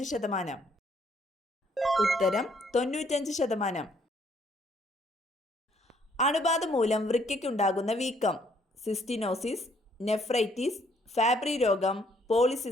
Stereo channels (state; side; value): normal; both; correlation 0.66